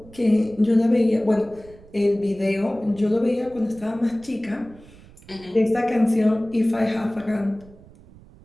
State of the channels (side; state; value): right; noise; rumble, 23 dB below the sound